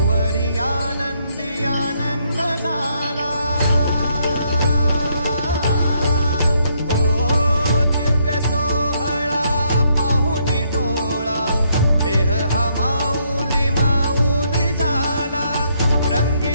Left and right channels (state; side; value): inverted; both; correlation -0.73